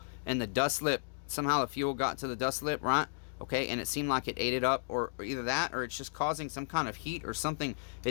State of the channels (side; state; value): right; silent; digital silence